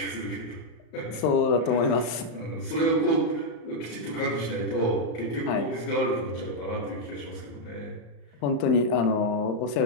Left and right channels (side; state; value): right; late; 34 ms